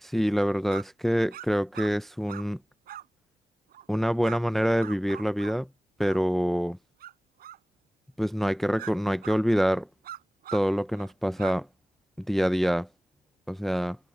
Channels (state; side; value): normal; both; correlation 0.98